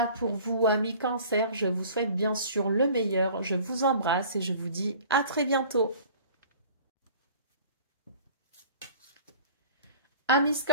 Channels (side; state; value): both; inverted; correlation -0.47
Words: pour vous, amis Cancer. Je vous souhaite bien sûr le meilleur. Je vous embrasse et je vous dis à très bientôt. Amis